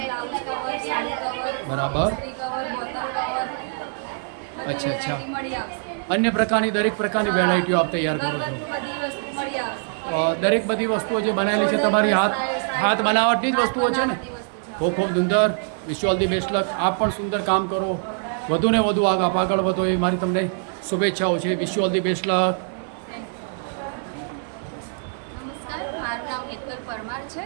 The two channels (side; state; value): left; silent; 62 dB below the other